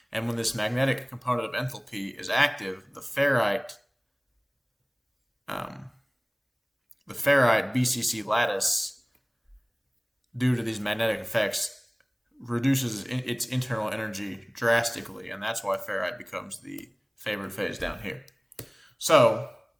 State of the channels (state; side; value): identical; both; correlation 1.00